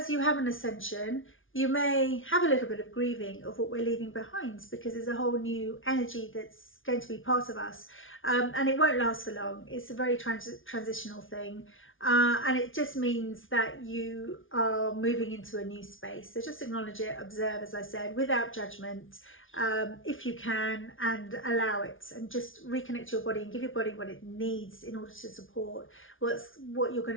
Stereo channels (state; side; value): late; right; 0.57 ms